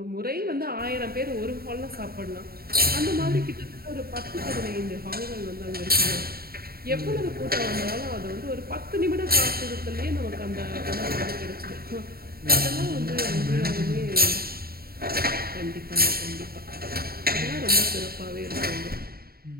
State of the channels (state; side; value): late; left; 0.44 ms